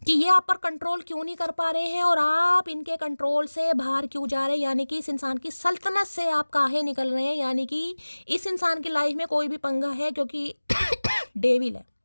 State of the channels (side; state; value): both; inverted; correlation -1.00